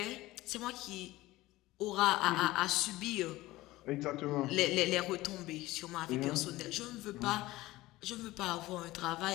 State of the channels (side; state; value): right; quieter; 18.1 dB